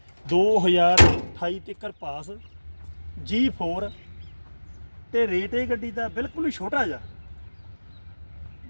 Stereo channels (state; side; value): inverted; both; correlation -1.00